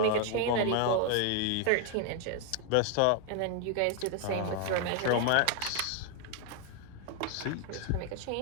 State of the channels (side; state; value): both; different; correlation 0.01